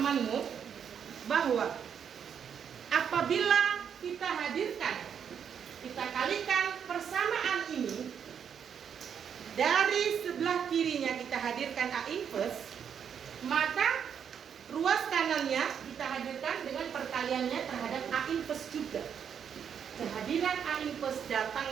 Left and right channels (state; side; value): quieter; left; 7.8 dB